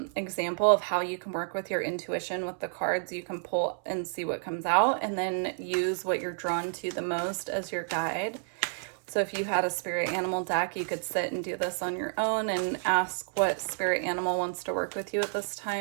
example of how you can work with your intuition with the cards. You can pull and see what comes out, and then use what you're drawn to the most as your guide. So if you had a spirit animal deck, you could sit and do this on your own and ask what spirit animal wants to work with you at this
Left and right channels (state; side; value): silent; left; 58 dB below the other